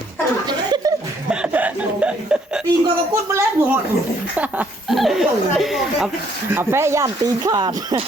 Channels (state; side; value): normal; both; correlation 0.66